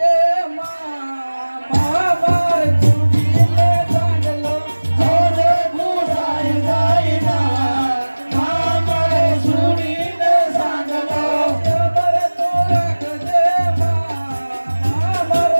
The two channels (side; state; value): both; inverted; correlation -1.00